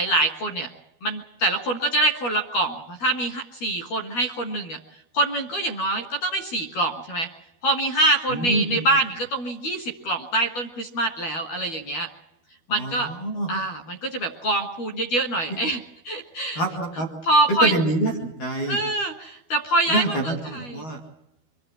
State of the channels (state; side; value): late; right; 12 ms